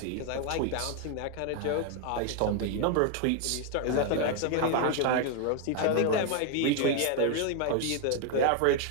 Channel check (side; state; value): both; different; correlation 0.01